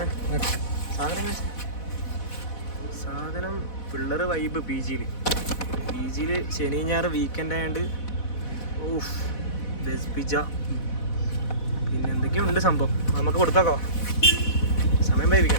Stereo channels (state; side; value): late; right; 4.1 ms